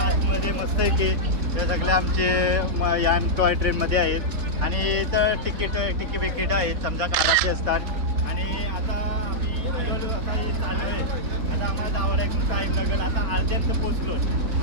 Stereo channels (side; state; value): left; late; 4.1 ms